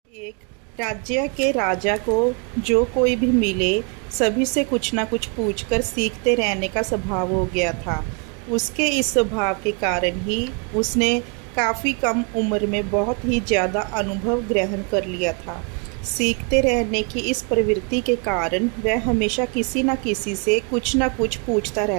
एक राज्य के राजा को जो कोई भी मिले सभी से कुछ ना कुछ पूछकर सीखते रहने का स्वभाव हो गया था। उसके इस स्वभाव के कारण ही उसने काफ़ी कम उम्र में बहुत ही ज़्यादा अनुभव ग्रहण कर लिया था। सीखते रहने की इस प्रवृत्ति के कारण वह हमेशा किसी न किसी से कुछ न कुछ पूछता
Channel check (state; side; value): quieter; left; 35.8 dB